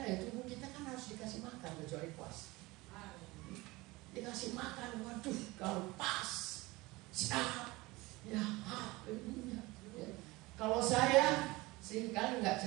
ya, tubuh kita kan harus dikasih makan kecuali puas. Dikasih makan, waduh, kalau pas, sehat, ya, ya. Kalau saya seringkali nggak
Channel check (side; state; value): left; quieter; 21.6 dB